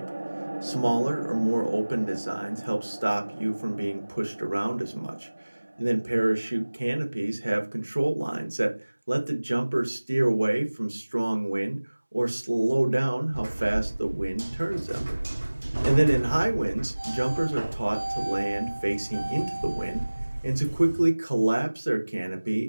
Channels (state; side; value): inverted; both; correlation -1.00